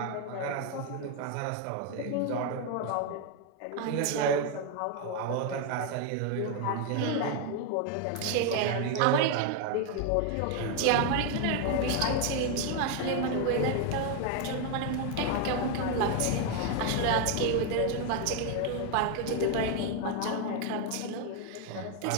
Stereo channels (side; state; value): both; different; correlation 0.01